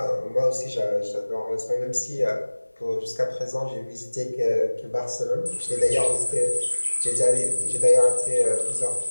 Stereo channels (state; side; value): inverted; both; correlation -1.00